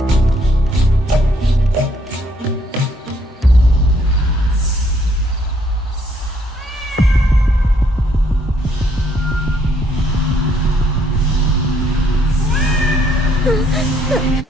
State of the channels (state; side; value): normal; both; correlation 0.68